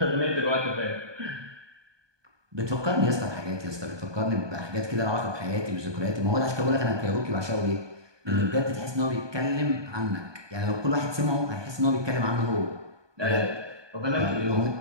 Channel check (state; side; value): late; left; 1.2 ms